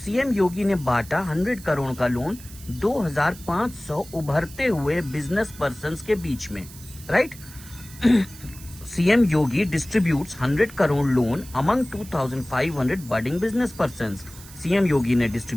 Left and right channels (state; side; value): noise; right; hiss, 18 dB below the sound